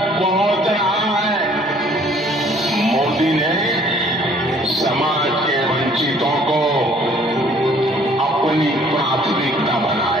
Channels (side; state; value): both; normal; correlation 0.58